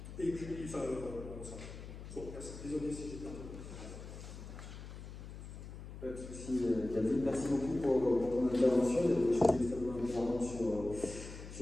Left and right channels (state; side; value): noise; left; hum, 12 dB below the sound